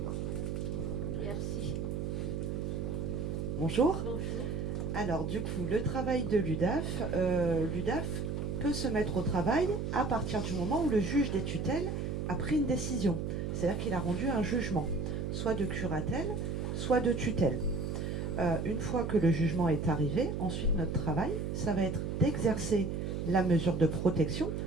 Merci. Bonjour. Bonjour. Alors, du coup, le travail de l'UDAF, l'UDAF peut se mettre au travail à partir du moment où le juge des tutelles a pris une décision. C'est-à-dire qu'il a rendu un jugement, soit de curatelle, soit de tutelle. Une fois que le jugement est arrivé, ensuite notre travail, ça va être d'exercer la mesure de protection,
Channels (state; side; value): noise; right; hum, 2 dB below the sound